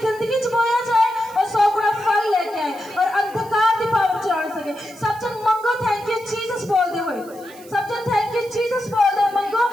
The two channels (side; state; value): right; noise; hiss, 23 dB below the sound